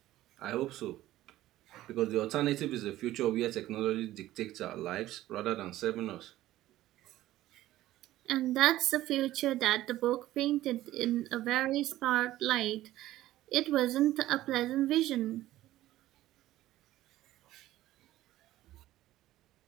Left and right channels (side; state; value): left; quieter; 15.0 dB